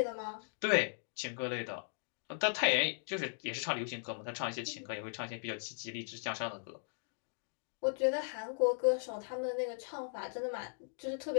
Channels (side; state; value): right; silent; digital silence